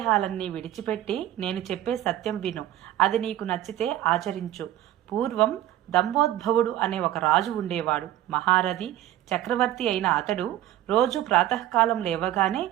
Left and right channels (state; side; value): quieter; left; 13.3 dB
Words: విడిచిపెట్టి నేను చెప్పే సత్యం విను. అది నీకు నచ్చితే ఆచరించు. పూర్వం దంభోద్భవుడు అనే ఒక రాజు ఉండేవాడు. మహారథి చక్రవర్తి అయిన అతడు రోజు ప్రాతకాలం లేవగానే